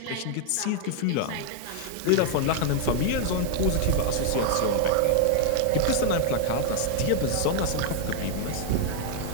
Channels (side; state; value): both; different; correlation 0.00